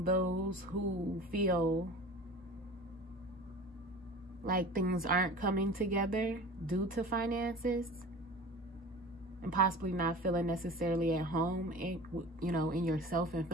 those who feel like things aren't coming together due to finances, and possibly not feeling necessarily at home in, you know, in yourself, and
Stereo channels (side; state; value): both; normal; correlation 0.38